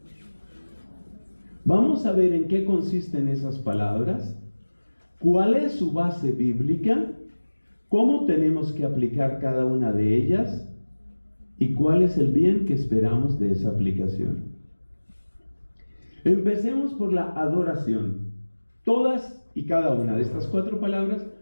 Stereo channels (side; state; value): both; inverted; correlation -1.00